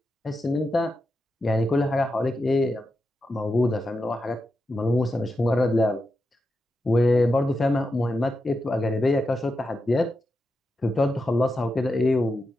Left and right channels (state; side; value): normal; both; correlation 0.88